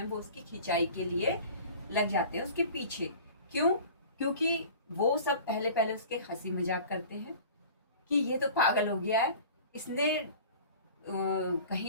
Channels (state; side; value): inverted; both; correlation -0.42